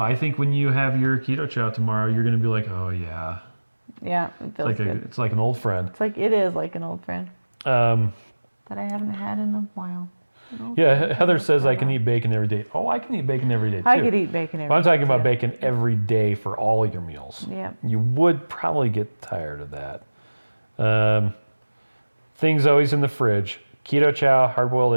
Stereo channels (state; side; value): inverted; both; correlation -1.00